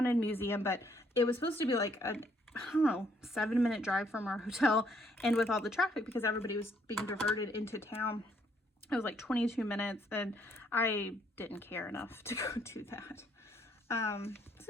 museum, but it was supposed to be like a, I don't know, 7-minute drive from our hotel, and with all the traffic, because everybody was being diverted into town, it was like 22 minutes, and I didn't care enough to go do that.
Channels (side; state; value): both; normal; correlation 0.69